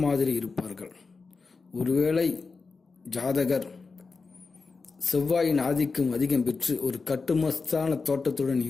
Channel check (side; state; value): right; quieter; 4.4 dB